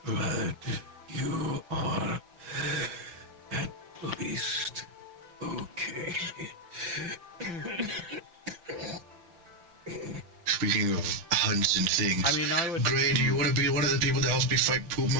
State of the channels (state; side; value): late; left; 6.5 ms